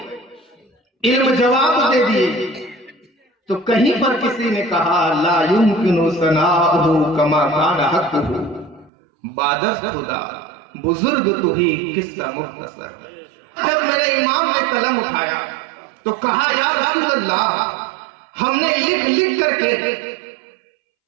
علم جواب دے دیے، تو کہیں پر کسی نے کہا لا یمکن ثناؤہ کما کان حقہ، بادست خدا بزرگ تو ہی قصہ مختصر. جب میرے امام نے قلم اٹھایا تو کہا یا رسول اللہ، ہم نے لکھ لکھ کر کے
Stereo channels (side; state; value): left; drops out; at 8.9 s